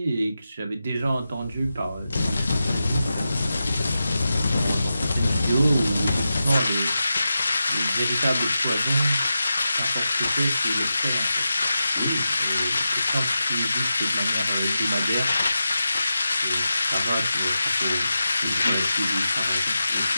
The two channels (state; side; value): inverted; both; correlation -0.90